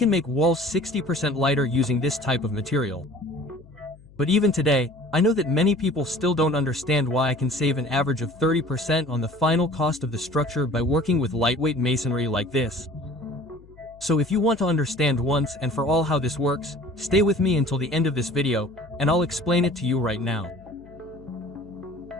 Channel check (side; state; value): left; noise; hum, 24 dB below the sound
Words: make walls 60% lighter using this type of material. But even today, I know that many people still don't understand why I can save an average of 30% on the final cost of the structure by working with lightweight masonry like this. So if you want to understand once and for all how this works, stay with me until the end of this video, and I'll explain it to you right now.